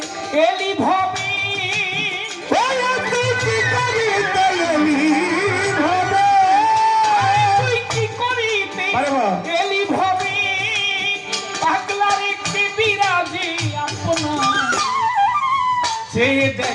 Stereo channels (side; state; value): both; identical; correlation 1.00